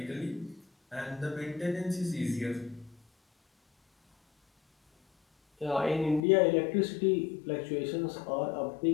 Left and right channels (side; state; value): right; drops out; at 6.2 s